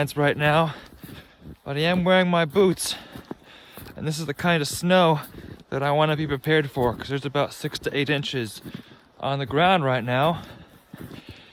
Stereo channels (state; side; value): identical; both; correlation 1.00